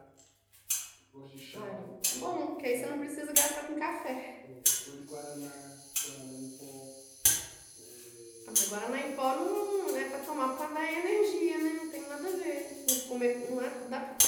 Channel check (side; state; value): both; identical; correlation 1.00